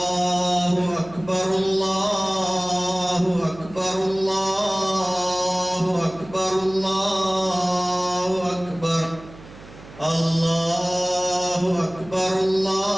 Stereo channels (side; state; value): right; noise; hum, 19 dB below the sound